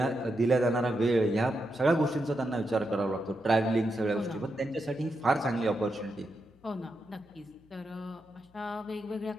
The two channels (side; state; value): left; noise; hum, 29 dB below the sound